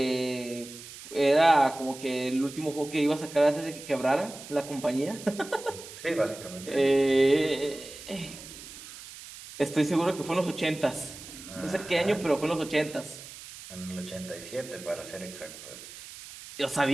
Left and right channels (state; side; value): noise; right; hiss, 15 dB below the sound